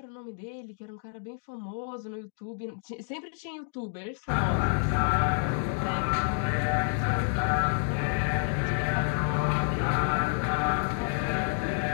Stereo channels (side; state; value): right; silent; 59 dB below the other